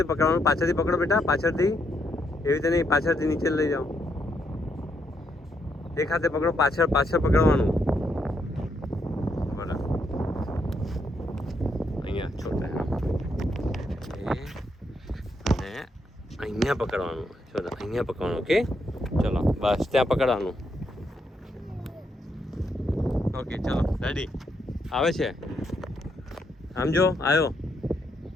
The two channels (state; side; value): normal; both; correlation 0.77